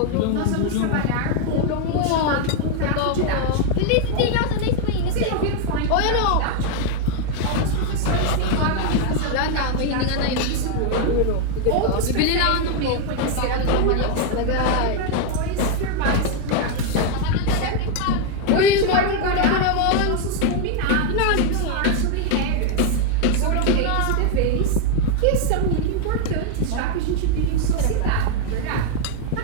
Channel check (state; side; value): different; both; correlation 0.00